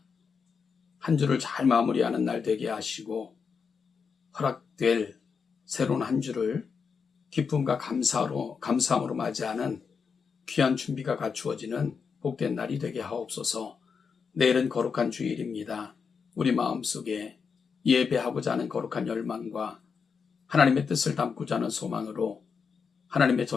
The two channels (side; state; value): right; quieter; 5.8 dB